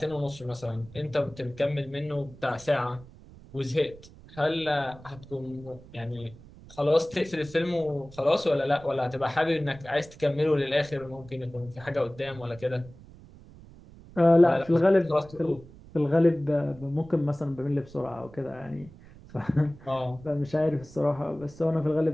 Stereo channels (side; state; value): right; noise; rumble, 20 dB below the sound